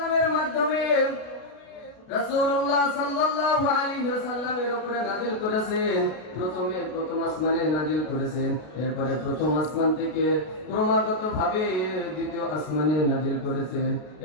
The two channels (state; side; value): late; right; 33 ms